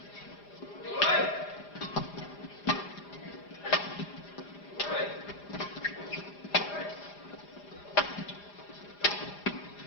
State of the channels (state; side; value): late; right; 4.9 ms